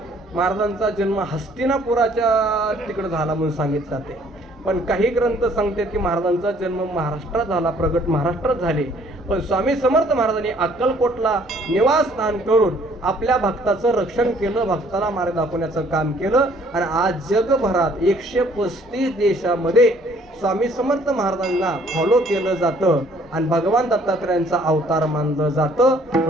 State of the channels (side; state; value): both; normal; correlation 0.60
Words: महाराजांचा जन्म हस्तिनापुराच्या तिकडे झाला म्हणून सांगितलं जाते. पण काही ग्रंथ सांगतात की महाराजांचा जन्म महाराष्ट्रात झाला, प्रगट महाराष्ट्रात झाले. पण स्वामी समर्थ महाराजांनी अक्कलकोटला निवासस्थान करून आपल्या भक्ताचं रक्षण केलं, भक्ताला मार्ग दाखवण्याचं काम केलं. आणि आज जगभरात 135 देशामध्ये स्वामी समर्थ महाराजांना फॉलो केलं जातं आणि भगवान दत्तात्रेयांचा अवतार मानलं जातं.